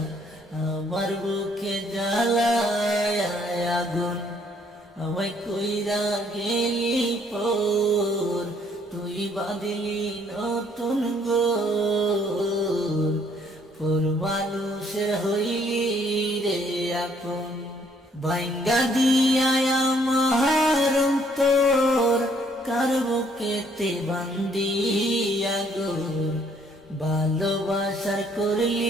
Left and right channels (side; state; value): both; normal; correlation 0.65